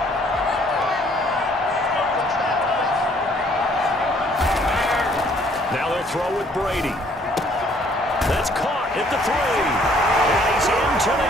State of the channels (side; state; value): both; normal; correlation 0.62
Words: Now they'll throw with Brady. That's caught at the 3. And he's into the